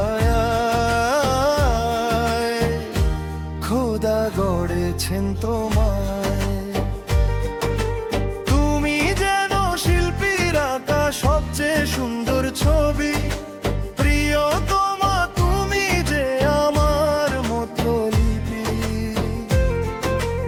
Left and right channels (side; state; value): both; identical; correlation 1.00